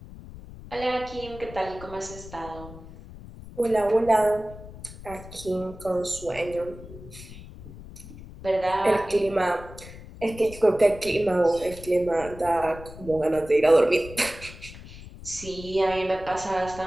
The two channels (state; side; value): noise; left; rumble, 15 dB below the sound